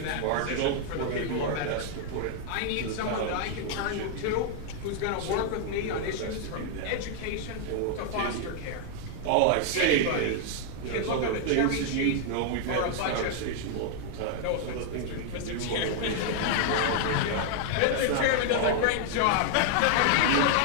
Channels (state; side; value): different; both; correlation 0.00